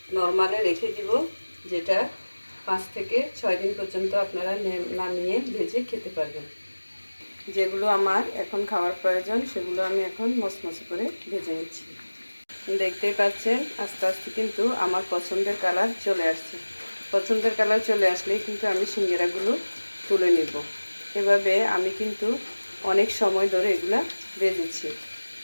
নর্মালে রেখে দিব, যেটা 5 থেকে 6 দিন পর্যন্ত আপনারা নামিয়ে ভেজে খেতে পারবেন। যেগুলো আমার এখন খাওয়ার প্রয়োজন সেগুলো আমি এখন মচমচে করে ভেজে নিচ্ছি। দেখতেই পাচ্ছেন আস্তে আস্তে কিন্তু আমার পছন্দের কালার চলে আসছে। পছন্দের কালার চলে আসলেই কিন্তু আমি সিঙ্গারাগুলো তুলে নেব। এভাবে আমি কিন্তু অনেক সময় ধরে এগুলা ভেজেছি,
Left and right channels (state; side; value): inverted; both; correlation -1.00